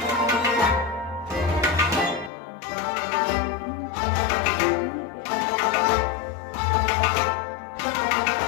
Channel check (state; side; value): drops out; right; at 2.3 s